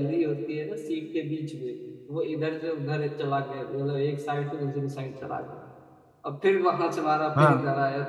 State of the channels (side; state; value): both; identical; correlation 1.00